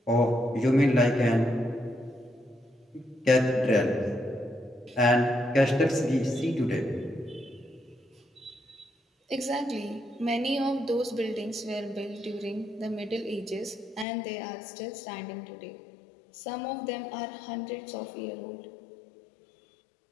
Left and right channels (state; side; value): drops out; right; at 14.1 s